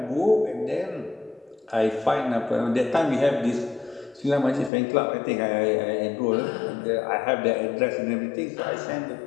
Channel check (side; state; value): right; drops out; at 4.7 s